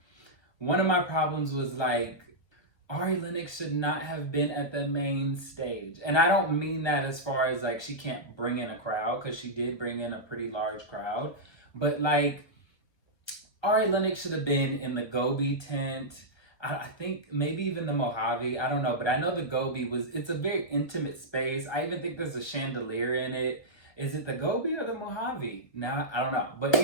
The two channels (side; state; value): right; late; 1.3 ms